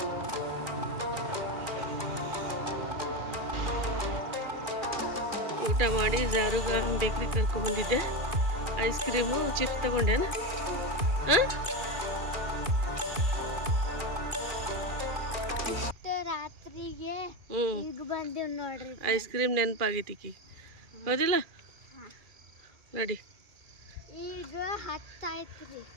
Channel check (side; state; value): left; late; 2.4 ms